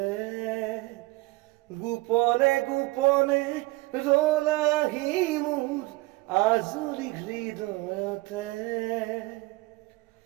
গোপনে গোপনে ৰলাহি মোৰ আজলি হৃদয়তে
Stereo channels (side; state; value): left; quieter; 21.6 dB